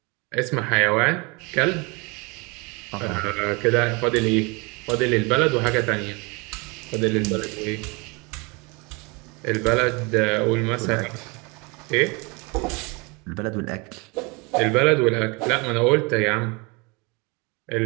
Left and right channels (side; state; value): left; quieter; 28.4 dB